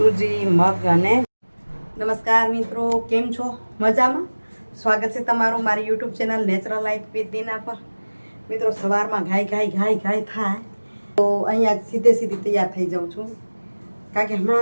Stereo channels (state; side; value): inverted; both; correlation -1.00